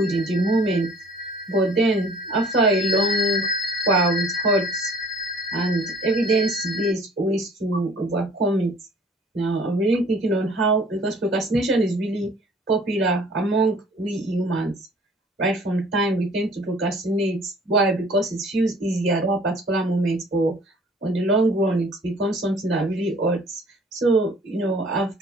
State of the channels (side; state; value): both; normal; correlation 0.53